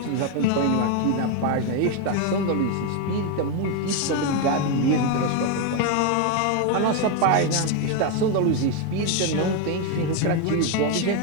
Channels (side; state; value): both; different; correlation 0.02